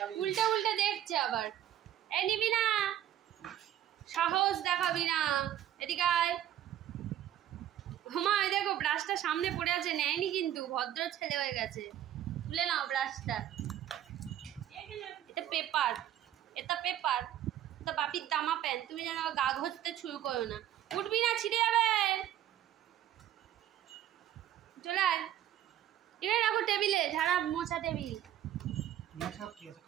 উল্টা দেখছে আবার। এই নিবি না, সাহস দেখাবি না, এদিকে আয়। মা দেখো ব্রাশটা সামনে পড়ে আছে, নেয়নি কিন্তু, ভদ্র ছেলে হয়ে গেছে। তুলে নাও ব্রাশটা। এটা পেপার, এটা বাপির দামা প্যান। তুমি যেন গা ঘষতে শুরু করো না, উঠবি না, ছিঁড়ে যাবে। চলে আয়, এখানে রাখো টেবিলে, ঝাড়া মোছা টেবিল।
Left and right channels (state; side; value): quieter; left; 11.6 dB